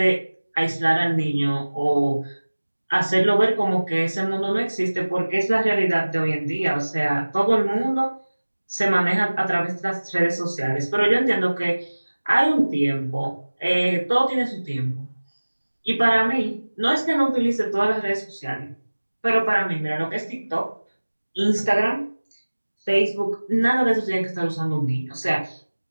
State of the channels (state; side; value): inverted; both; correlation -1.00